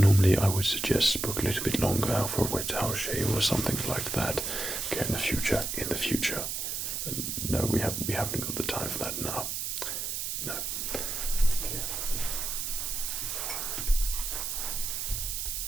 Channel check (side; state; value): right; noise; hiss, 3 dB below the sound